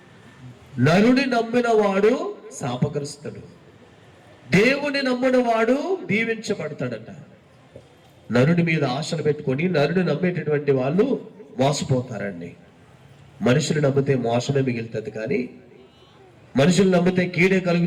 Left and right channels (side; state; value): both; identical; correlation 1.00